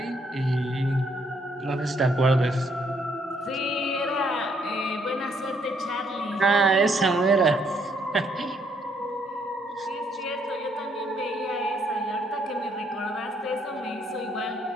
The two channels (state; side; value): normal; both; correlation 0.70